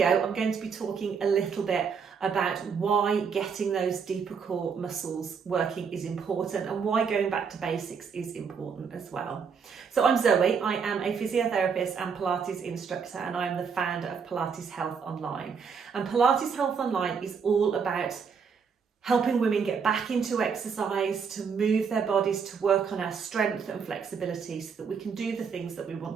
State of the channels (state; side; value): quieter; left; 6.1 dB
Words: I'm going to be talking a little bit about why getting those deeper core muscles working is important and why going back to basics is important as well. So I'm Zoe, I am a physiotherapist and Pilates instructor, and I am the founder of Pilates Health Online. And Pilates Health Online is all about helping women get back into exercise, to move their bodies, to work on our strength and flexibility so that we can do the things that we